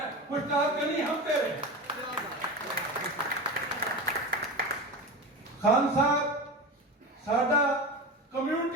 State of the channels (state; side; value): normal; both; correlation 0.26